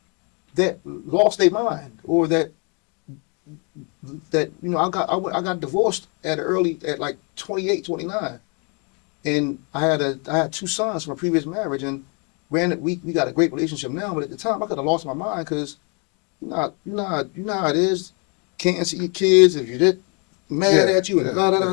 that lost their mind, or that you know, I got divorced at like 28, 29, and I had 2 sons from a previous marriage, and we got a great relationship now, but at the time I could have lost my mind because you know how it is. Can't see your kids if you're mad at you and da da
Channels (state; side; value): quieter; right; 35.0 dB